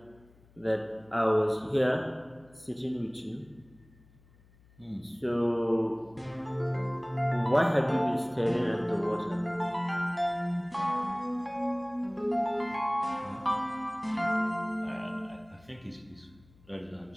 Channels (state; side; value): noise; left; hum, 28 dB below the sound